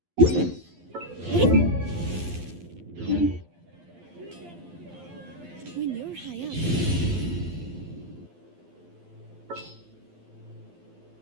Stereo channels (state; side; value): late; left; 12 ms